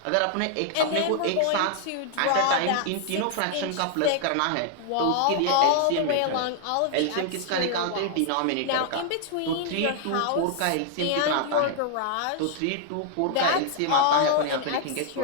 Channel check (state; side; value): different; both; correlation -0.01